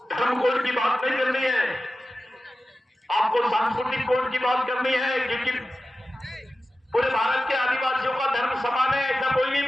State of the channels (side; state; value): both; normal; correlation 0.94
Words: धर्म कोड की बात नहीं करनी है, आपको सांस्कृतिक कोड की बात करनी है, क्योंकि पूरे भारत के आदिवासियों का धर्म समान है ऐसा कोई नहीं